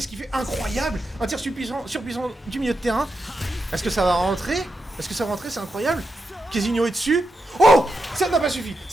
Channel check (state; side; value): normal; both; correlation 0.86